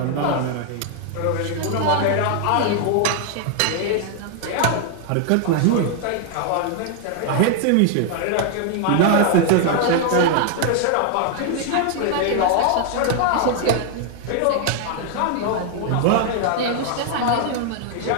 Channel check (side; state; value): both; different; correlation 0.00